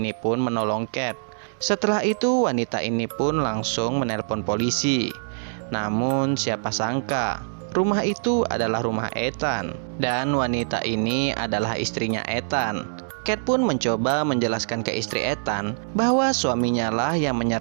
pun menolong Kate. Setelah itu wanita ini pun langsung menelpon polisi. Namun siapa sangka rumah itu adalah rumah Ethan. Dan wanita ini adalah istrinya Ethan. Kate pun mencoba menjelaskan ke istri Ethan bahwa suaminya lah yang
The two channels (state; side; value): silent; left; digital silence